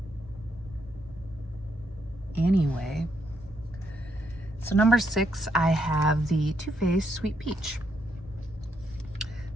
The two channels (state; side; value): normal; both; correlation 0.76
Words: Anyway, so number 6, I have the Too Faced Sweet Peach.